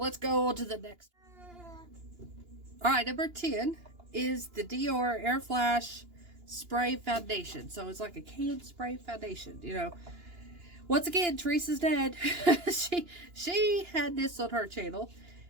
go on to the next. Alright, number 10 is the Dior Air Flash Spray Foundation. So, it's like a canned spray foundation, you know. Once again, Teresa's dad, she had this on her channel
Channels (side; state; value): left; late; 2.9 ms